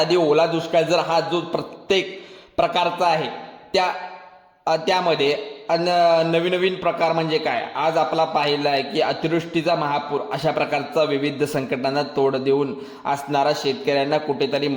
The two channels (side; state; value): both; identical; correlation 1.00